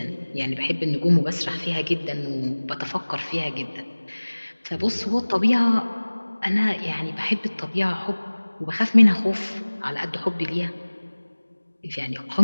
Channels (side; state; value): both; inverted; correlation -1.00